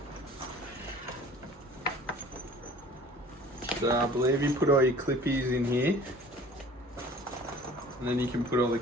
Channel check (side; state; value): both; normal; correlation 0.48